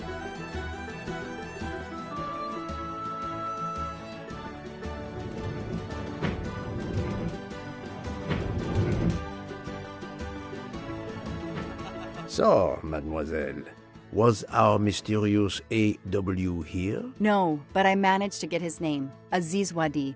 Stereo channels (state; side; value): identical; both; correlation 1.00